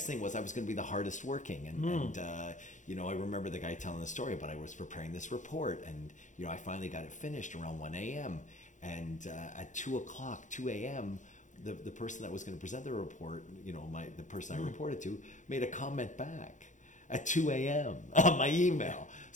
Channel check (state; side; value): late; right; 0.36 ms